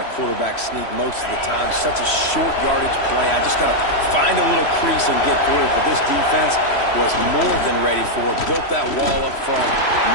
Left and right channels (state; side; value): late; right; 3.1 ms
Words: quarterback sneak most of the time. Such a short yardage play. I just got to find a little crease and get through it. But this defense was more than ready for it. Built that wall up front.